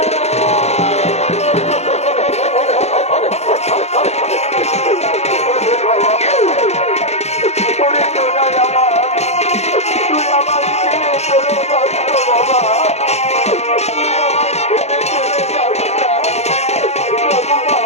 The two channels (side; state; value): right; late; 0.31 ms